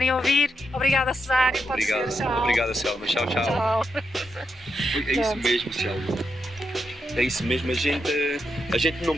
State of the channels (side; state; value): both; normal; correlation 0.83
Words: a ouvir. Obrigada, Cesário. Pode ser, tchau. Obrigada, Selma. Tchau, tchau. Tchau. É isso mesmo, Selma. É isso mesmo, a gente não